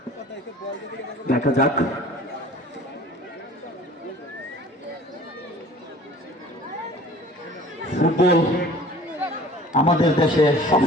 দেখা যাক। ফুটবল আমাদের দেশে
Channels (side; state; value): both; normal; correlation 0.47